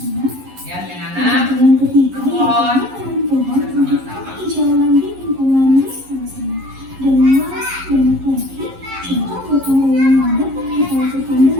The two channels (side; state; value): left; late; 11 ms